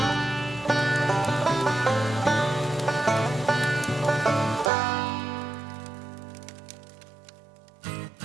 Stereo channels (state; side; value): drops out; left; at 4.7 s